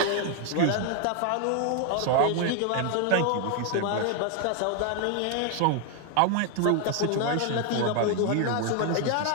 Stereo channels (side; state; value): both; different; correlation 0.01